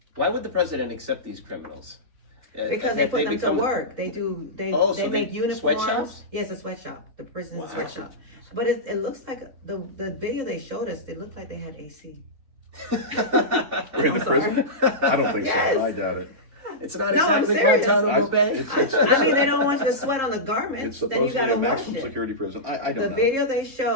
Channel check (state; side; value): late; left; 3.8 ms